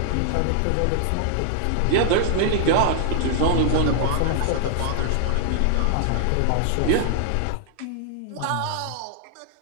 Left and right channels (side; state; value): both; different; correlation -0.01